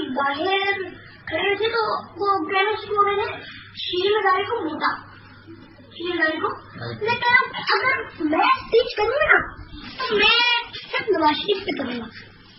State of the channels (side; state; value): both; identical; correlation 1.00